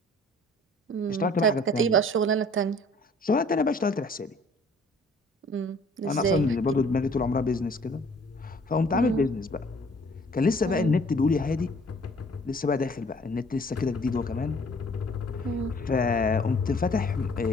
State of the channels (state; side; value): normal; both; correlation 0.55